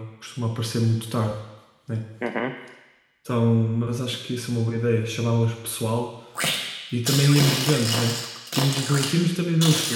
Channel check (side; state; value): both; identical; correlation 1.00